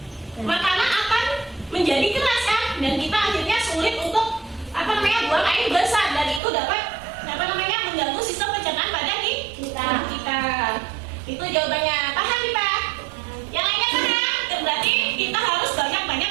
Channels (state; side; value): drops out; left; at 6.4 s